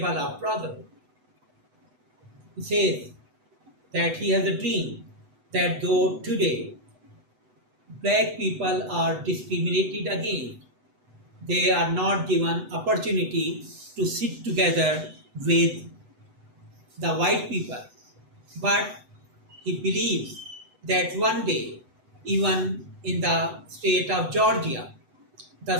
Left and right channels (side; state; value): left; late; 8.0 ms